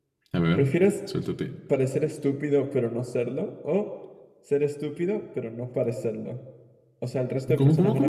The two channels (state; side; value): identical; both; correlation 1.00